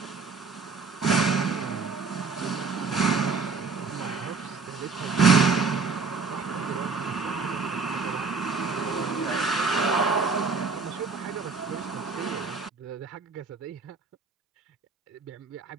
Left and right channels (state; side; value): quieter; left; 4.7 dB